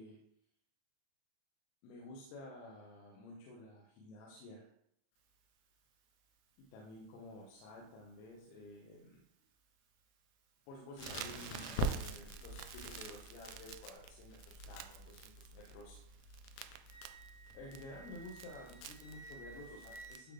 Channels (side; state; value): right; late; 37 ms